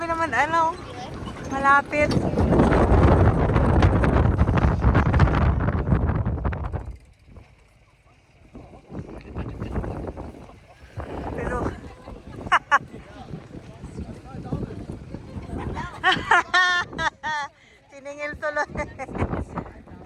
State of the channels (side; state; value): both; identical; correlation 1.00